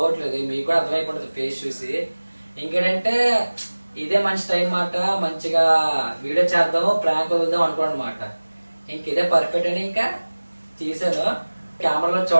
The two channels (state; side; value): inverted; both; correlation -1.00